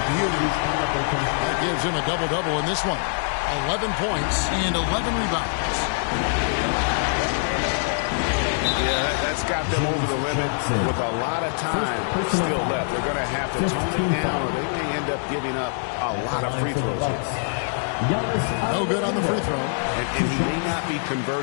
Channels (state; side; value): silent; right; 63 dB below the other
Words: gives him a double-double in this one. 11 points and 11 rebounds. Yeah, that's got them over the limit with a lot of time still left. They're going to have to tone it down, or they may end up giving up a lot of free throws. No good on the free throw. And he may not be